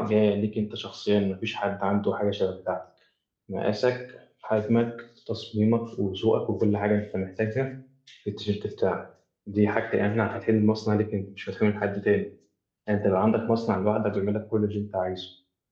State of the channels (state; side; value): identical; both; correlation 1.00